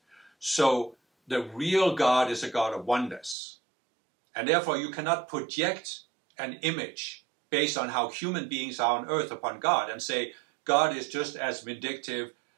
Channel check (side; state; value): left; drops out; at 3.4 s